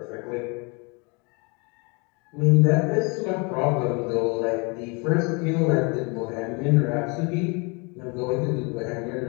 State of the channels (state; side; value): quieter; right; 31.0 dB